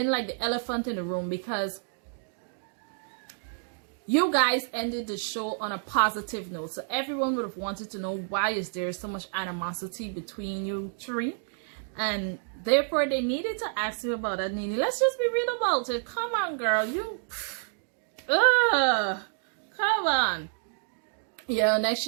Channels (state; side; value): silent; left; digital silence